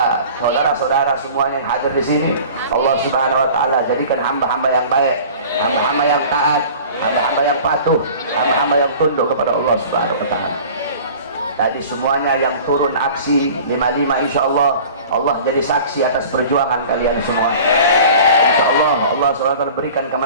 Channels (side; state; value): both; inverted; correlation -0.43